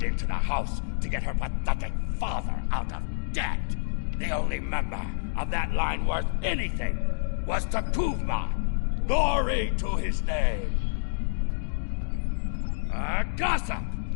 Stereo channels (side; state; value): right; silent; digital silence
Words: into the house to get her pathetic father out of debt. The only member of that line worth anything was Takuvma. Glory to his name. Gossip!